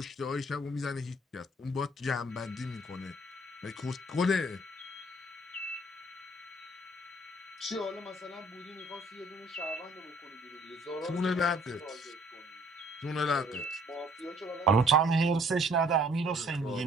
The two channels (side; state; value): both; normal; correlation 0.59